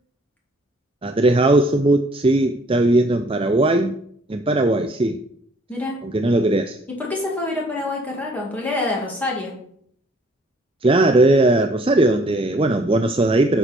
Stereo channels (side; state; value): both; normal; correlation 0.60